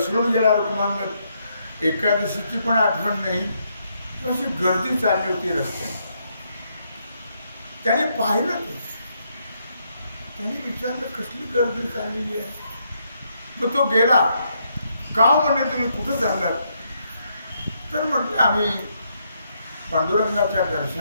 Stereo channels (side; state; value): both; inverted; correlation -0.76